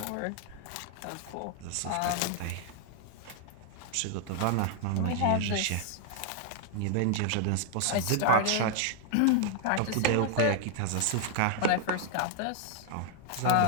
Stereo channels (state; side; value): different; both; correlation 0.00